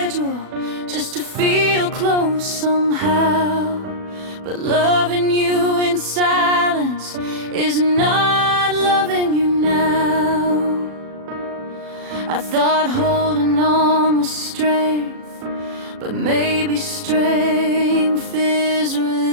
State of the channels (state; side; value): late; left; 37 ms